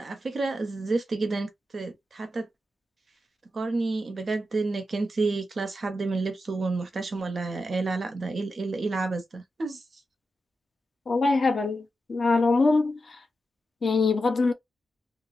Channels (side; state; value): both; normal; correlation 0.88